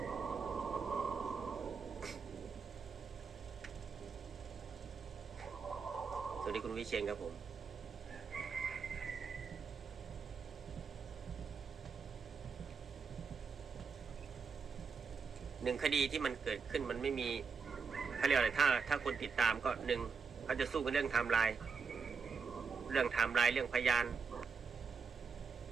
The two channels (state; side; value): quieter; left; 5.4 dB